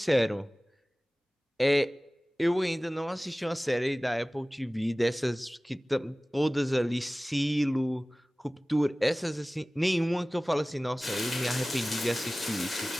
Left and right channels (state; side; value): normal; both; correlation 0.98